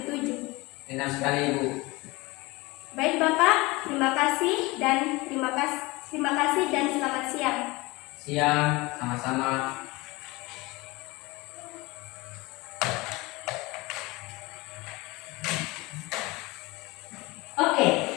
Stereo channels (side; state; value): right; quieter; 23.0 dB